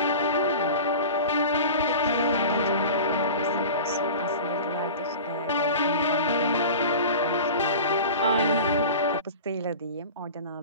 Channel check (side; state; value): both; inverted; correlation -0.35